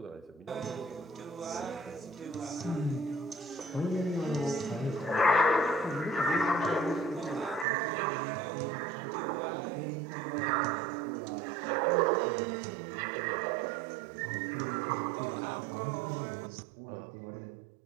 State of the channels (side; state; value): left; drops out; at 7.7 s